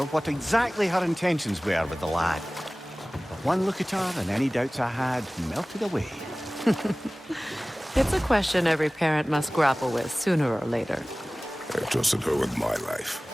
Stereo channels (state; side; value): normal; both; correlation 0.98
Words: what exactly her intentions were with the lad. But one look at her and any doubts I had melted away. It's a question every parent must grapple with sooner or later. I trusted her with my life.